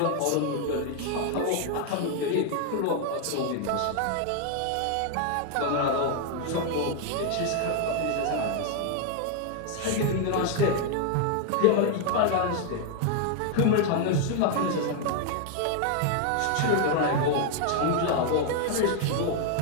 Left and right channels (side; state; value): both; different; correlation 0.00